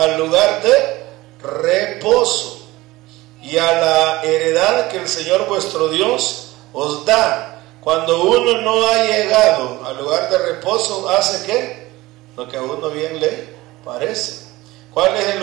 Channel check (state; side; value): quieter; left; 19.2 dB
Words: lugar de reposo y a la heredad que el Señor vuestro Dios os da. Cuando uno no ha llegado al lugar de reposo, ¿hace qué? Lo que a uno bien le parece. ¿Cuál es el